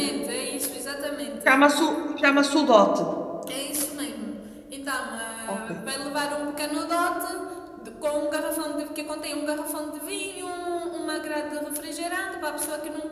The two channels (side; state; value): both; identical; correlation 1.00